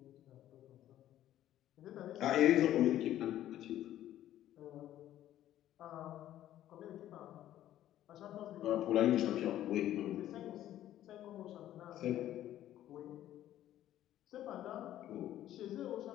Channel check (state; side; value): quieter; right; 12.6 dB